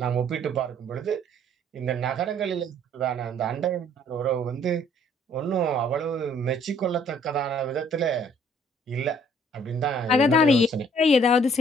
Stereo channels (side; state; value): both; normal; correlation 0.60